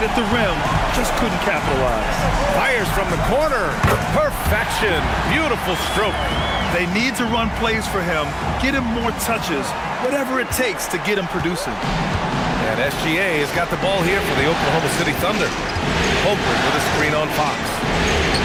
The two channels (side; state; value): both; identical; correlation 1.00